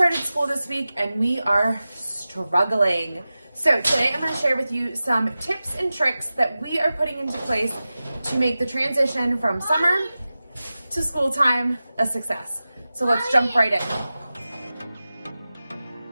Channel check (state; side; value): inverted; both; correlation -0.95